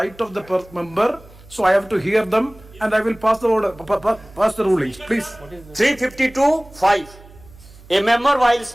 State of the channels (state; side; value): noise; right; hum, 23 dB below the sound